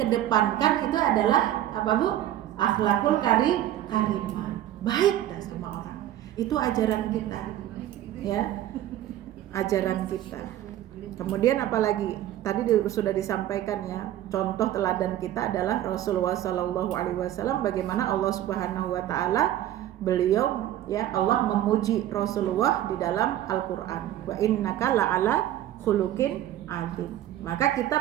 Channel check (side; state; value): left; quieter; 12.7 dB